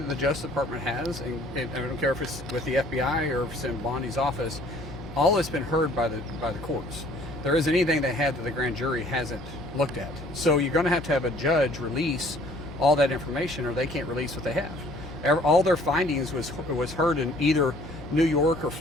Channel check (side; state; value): left; noise; hum, 13 dB below the sound